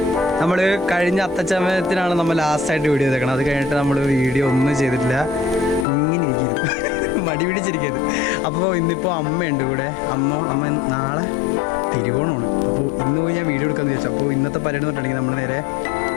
നമ്മൾ കഴിഞ്ഞ അത്തച്ചമയത്തിനാണ് നമ്മൾ ലാസ്റ്റായിട്ട് വീഡിയോ ചെയ്തേക്കണം. അത് കഴിഞ്ഞിട്ട് നമ്മൾ വീഡിയോ ഒന്നും ചെയ്തിട്ടില്ല, ഇങ്ങനെ ഇരിക്കുന്നു, മടി പിടിച്ചിരിക്കുന്നത്. അപ്പോൾ ഇന്നിപ്പോൾ അമ്മയുണ്ട് കൂടെ. അമ്മ നാളെ തിരുവോണമാണ്. അപ്പോൾ ഇന്ന് പോയി ഞാൻ വീഡിയോ എടുക്കാമെന്ന് ചോദിച്ചു. അപ്പോൾ ഇന്നത്തെ പരിപാടി എന്ന് പറഞ്ഞിട്ടുണ്ടെങ്കിൽ നമ്മൾ നേരെ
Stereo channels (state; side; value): drops out; right; at 5.9 s